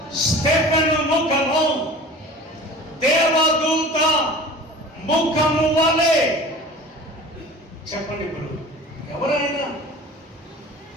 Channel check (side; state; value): both; normal; correlation 0.40